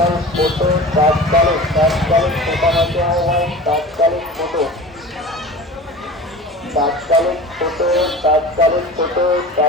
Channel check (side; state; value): both; normal; correlation 0.36